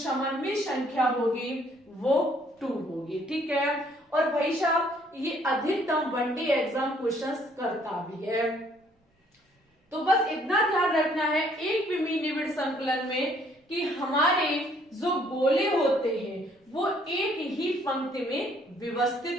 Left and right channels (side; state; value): both; normal; correlation 0.63